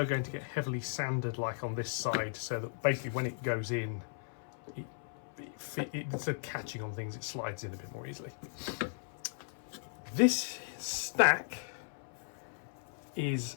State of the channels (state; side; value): silent; right; 53 dB below the other